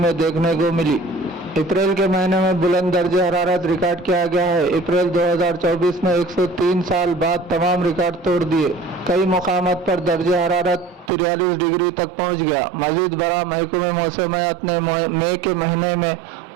देखने को मिली। अप्रैल के महीने में बुलंद दर्जे हरारत रिकॉर्ड किया गया है। अप्रैल 2024 में 103 साल बाद तमाम रिकॉर्ड तोड़ दिए। कई मुकामात पर दर्जे हरारत 43 डिग्री तक पहुंच गया। मजीद बड़ा महकमे मौसमियात ने मई के महीने में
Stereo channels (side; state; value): left; drops out; at 11.1 s